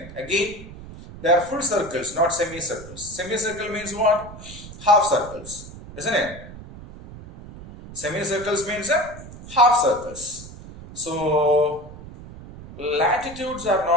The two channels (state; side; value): noise; right; rumble, 15 dB below the sound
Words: Again, they are full circles, not semicircles. Semicircle means what? Half circles, isn't it? Semicircles means half circles. So latitudes are